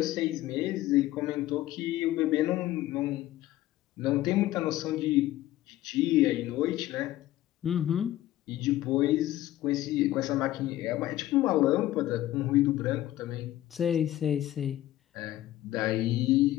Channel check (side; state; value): right; quieter; 14.7 dB